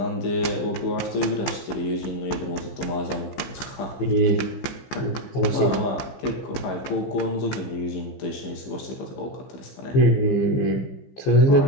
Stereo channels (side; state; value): right; late; 15 ms